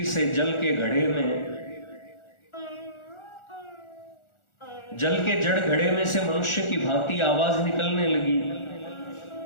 से जल के जड़ घड़े में से मनुष्य की भांति आवाज निकलने लगी।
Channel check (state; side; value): late; right; 1.4 ms